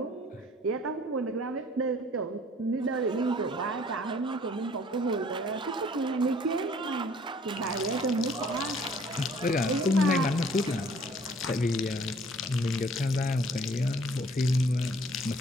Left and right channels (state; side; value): normal; both; correlation 0.56